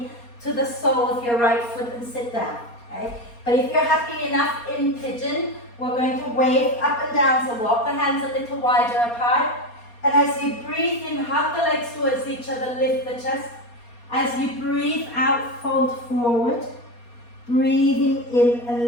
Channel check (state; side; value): late; right; 4.3 ms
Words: to the sole of your right foot and sit down. Okay? But if you're happy enough in pigeon, we're going to wave up and down, so walk the hands a little wider apart. And as you breathe in, hug the legs towards each other, lift the chest. As you breathe out, fold forward. Breathing in